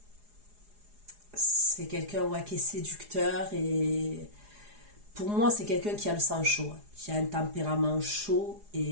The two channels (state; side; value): late; left; 4.8 ms